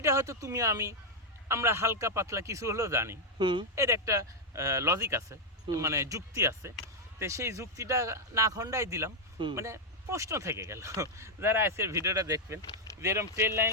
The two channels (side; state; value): both; normal; correlation -0.01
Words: হয়তো তুমি আমরা হালকা পাতলা কিছু হলেও জানি। এর একটা লজিক আছে, মানে যুক্তি আছে। তো সেই যুক্তিটা না খণ্ডাই দিলাম, মানে প্রশ্ন থেকে গেল যারা আজকের ভিডিওটা দেখবেন, যে এরকম ট্রেন